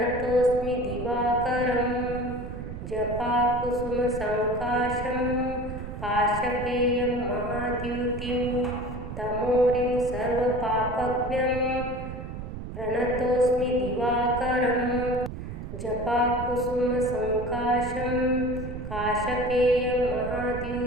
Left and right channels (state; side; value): noise; right; rumble, 8 dB below the sound